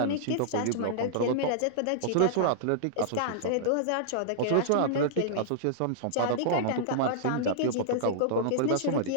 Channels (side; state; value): both; different; correlation -0.02